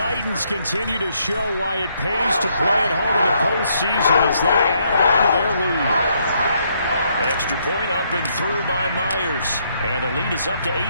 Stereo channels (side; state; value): both; inverted; correlation -0.73